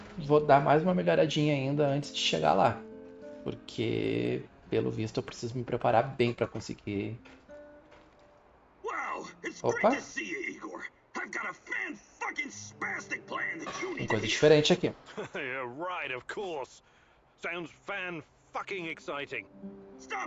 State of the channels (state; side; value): identical; both; correlation 1.00